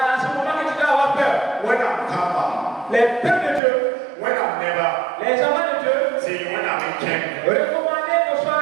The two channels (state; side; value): drops out; left; at 3.6 s